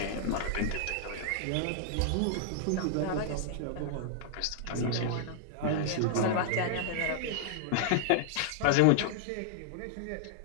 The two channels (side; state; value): both; different; correlation -0.01